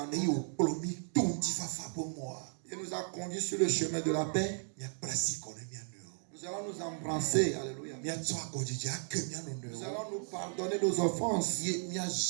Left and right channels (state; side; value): silent; left; 54 dB below the other